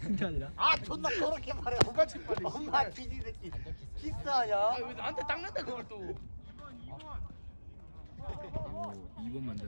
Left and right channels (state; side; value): inverted; both; correlation -1.00